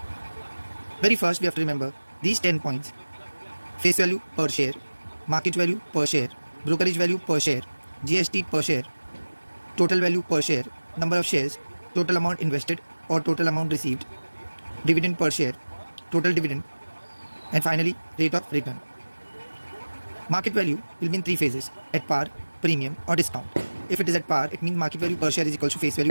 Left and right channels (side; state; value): both; inverted; correlation -1.00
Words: Very first we have to remember these 10 points. Face value per share, market value per share, brokerage value per share, GST per share, total value per share, number of shares, total amount invested or total amount received, dividend per share, total dividend, and finally rate of return. Market value will be in three phases: at par, premium or discount. If it is at par, it means market value per share is equal to face